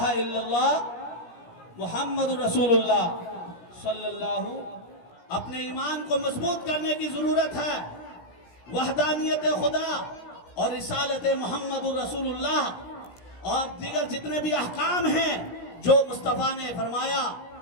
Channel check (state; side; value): late; right; 17 ms